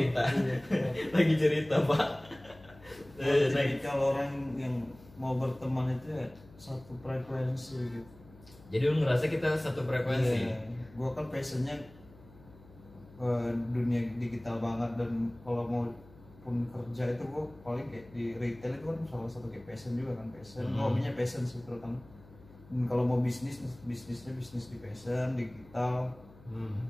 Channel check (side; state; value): left; noise; hum, 22 dB below the sound